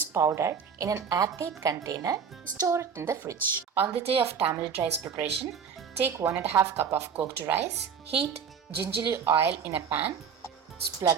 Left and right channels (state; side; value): quieter; left; 6.8 dB